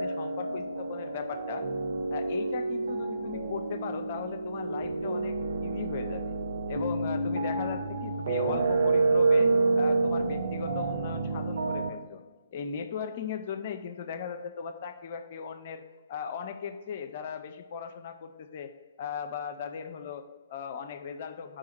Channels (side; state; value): both; inverted; correlation -0.79